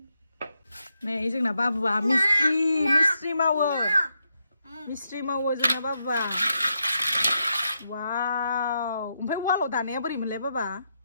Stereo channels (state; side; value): inverted; both; correlation -0.83